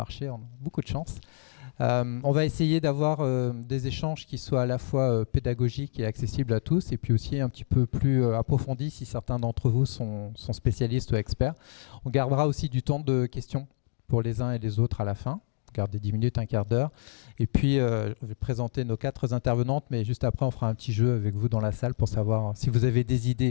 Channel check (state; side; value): silent; right; 60 dB below the other